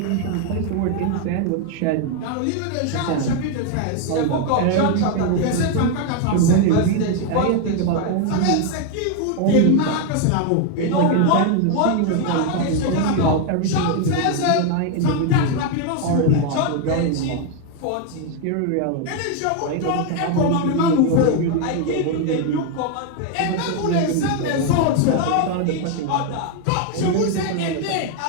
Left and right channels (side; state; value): both; different; correlation 0.01